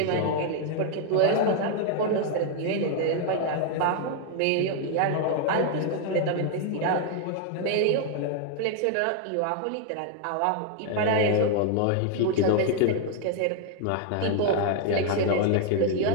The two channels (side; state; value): both; different; correlation 0.00